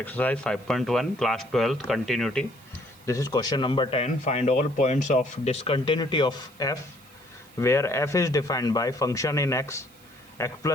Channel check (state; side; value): noise; right; hiss, 27 dB below the sound